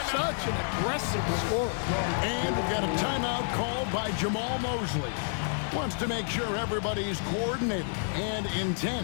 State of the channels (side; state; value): right; silent; digital silence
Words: Such an aggressive scorer. And we've got a timeout called by Jamal Mosley. Wants to make sure everybody's coordinated and